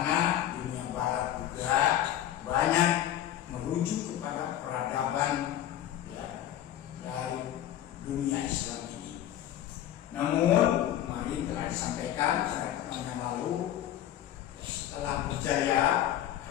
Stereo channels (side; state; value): right; quieter; 11.8 dB